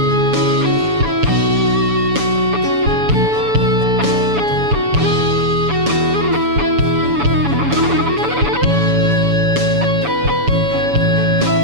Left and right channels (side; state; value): left; late; 7.0 ms